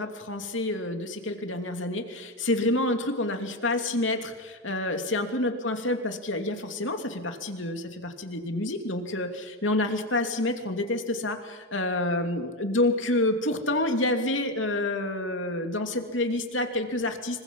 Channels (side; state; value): both; normal; correlation 0.12